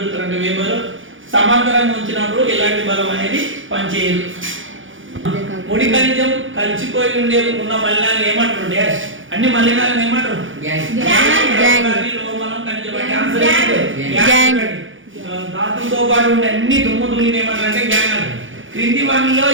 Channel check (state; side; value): late; left; 0.57 ms